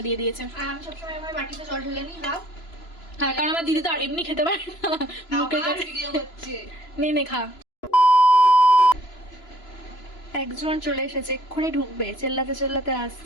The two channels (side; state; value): right; late; 2.9 ms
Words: দিয়ে দিয়েছে। আর আমি সবসময় আমার বাটিতে জল ঢেলে নিই হাফ। হ্যাঁ, কারণ আমার দিদি তো আর এমনি খেতে পারে না, মুখের কাছে। ভিডিও হচ্ছে। নে খা। একজন চলে এসেছে, এক্ষুনি ঢুকবে, চেল্লাতে চেল্লাতে